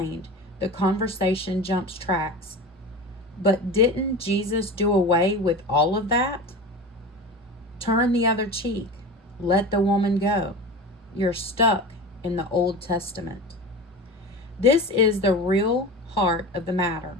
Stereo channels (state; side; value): normal; both; correlation 0.30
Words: the conversation jumps tracks. But didn't Jesus do away with all of that? Turn the other cheek. Let the woman go. You're stuck in the Old Testament. This is the real heart of the matter,